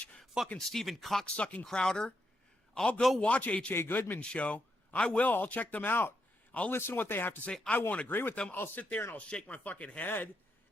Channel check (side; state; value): both; normal; correlation 0.81